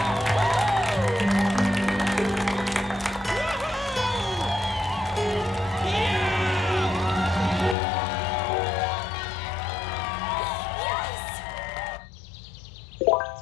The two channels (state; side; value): drops out; right; at 7.8 s